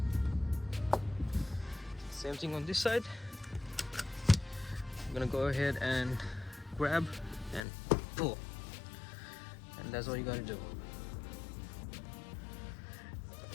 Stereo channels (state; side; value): drops out; right; at 7.6 s